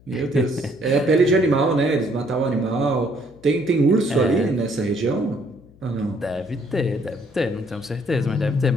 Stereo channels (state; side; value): noise; left; hum, 26 dB below the sound